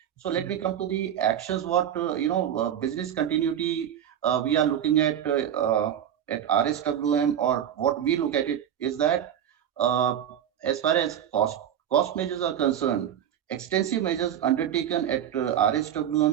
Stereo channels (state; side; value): quieter; left; 9.9 dB